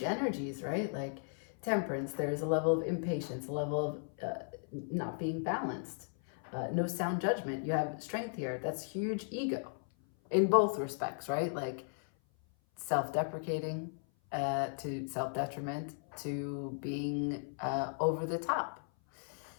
right? Like temperance, there's a level of impatience, a level of not being balanced, no sound judgment. You have strength here. That's huge ego in both respects, right? Like self-deprecating to self-detriment to being over the top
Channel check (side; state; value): right; silent; 54 dB below the other